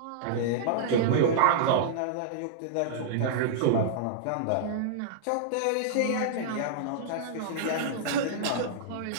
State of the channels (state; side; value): different; both; correlation -0.02